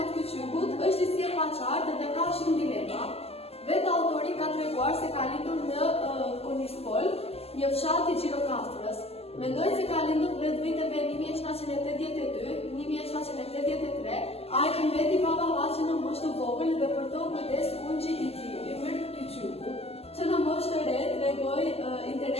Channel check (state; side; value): late; right; 0.29 ms